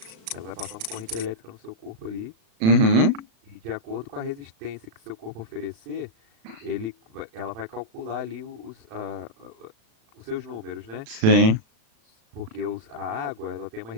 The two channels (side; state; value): left; late; 36 ms